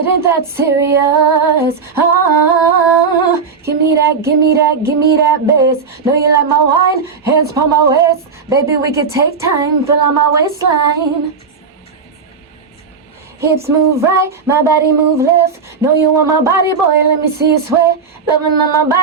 ain't that serious. Give me that, give me that, give me that bass. Know you like my wine, hands on my waist. Baby, we could take time, fill out my waistline. Hips move right, my body move left. Know you want my body, boy, let me see you sweat. Loving on my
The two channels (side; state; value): left; quieter; 5.3 dB